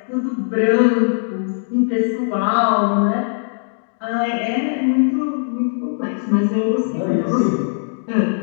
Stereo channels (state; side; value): silent; right; digital silence